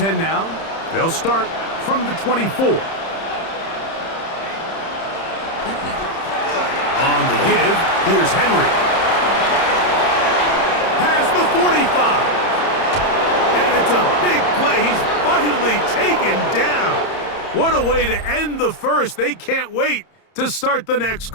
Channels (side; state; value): right; late; 30 ms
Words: now. They'll start from the 24. On the give, here's Henry. Past the 45. And it's a big play. He's finally taken down. What a way to end the first. They can't wait to start the next